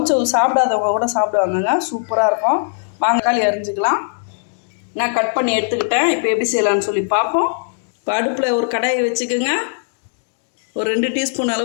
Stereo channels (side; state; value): right; silent; digital silence